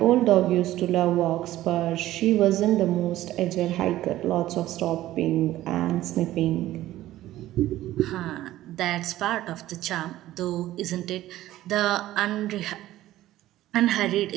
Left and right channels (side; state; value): left; quieter; 14.8 dB